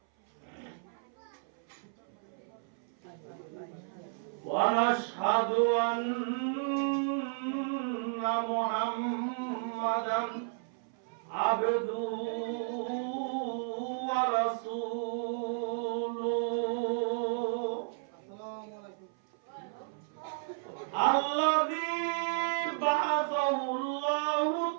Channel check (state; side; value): silent; left; 56 dB below the other